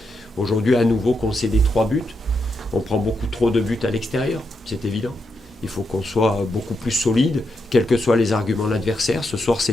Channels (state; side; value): normal; both; correlation 0.83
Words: aujourd'hui à nouveau concédé 3 buts. On prend beaucoup trop de buts à l'extérieur, c'est évident. Il faut qu'on soit beaucoup plus solide, quels que soient les arguments de l'adversaire. Ce soir,